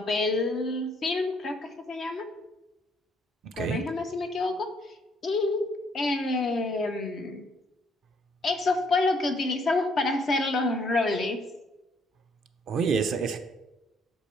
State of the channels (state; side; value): normal; both; correlation 0.67